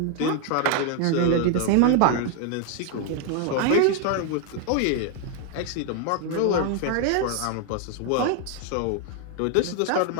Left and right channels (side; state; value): both; different; correlation 0.00